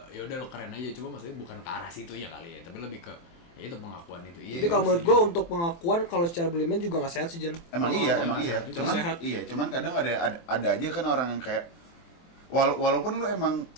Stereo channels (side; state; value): right; late; 24 ms